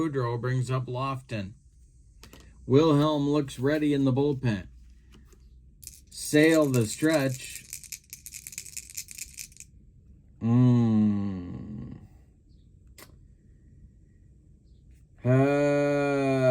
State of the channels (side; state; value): both; identical; correlation 1.00